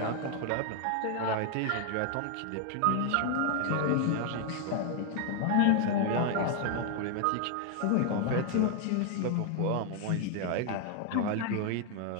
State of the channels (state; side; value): different; both; correlation 0.00